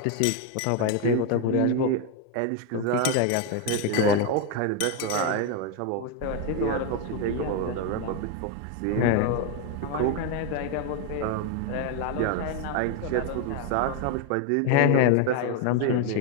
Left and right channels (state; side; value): different; both; correlation 0.01